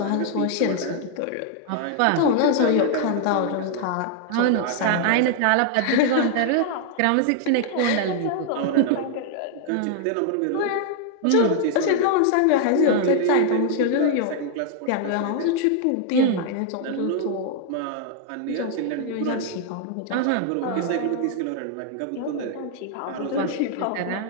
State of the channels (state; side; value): different; both; correlation 0.00